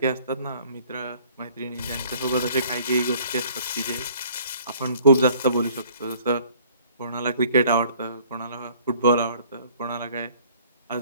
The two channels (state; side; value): inverted; both; correlation -0.55